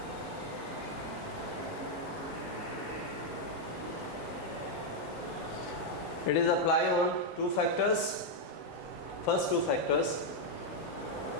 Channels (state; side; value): normal; both; correlation -0.01